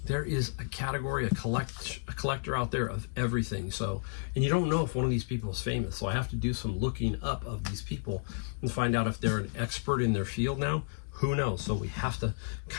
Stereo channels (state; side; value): silent; right; digital silence